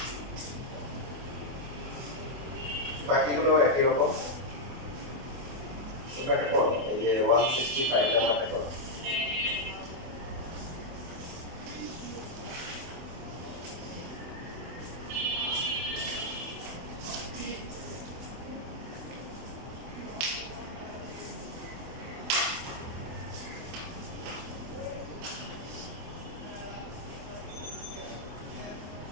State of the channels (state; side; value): late; left; 24 ms